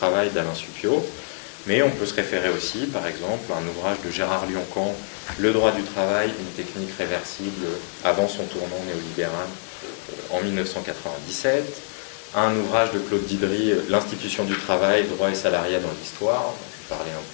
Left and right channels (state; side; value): silent; right; 56 dB below the other